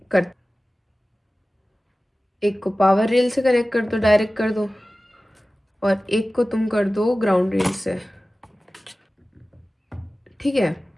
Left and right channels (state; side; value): normal; both; correlation 0.96